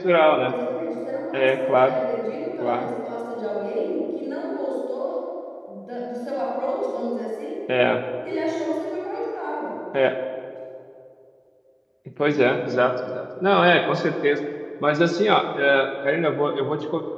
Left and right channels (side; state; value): both; identical; correlation 1.00